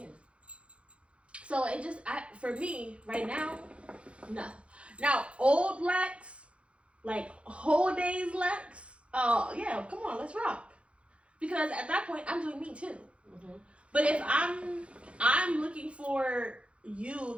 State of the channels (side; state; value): left; late; 0.060 ms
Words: So it just, for me, right now, no. Now, old Lex, like whole days Lex, oh yeah, come on, let's rock. Because at that point, I'm doing me too. But if I'm looking for you